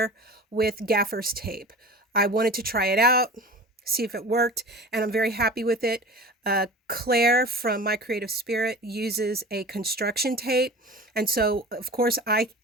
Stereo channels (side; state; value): both; normal; correlation 0.37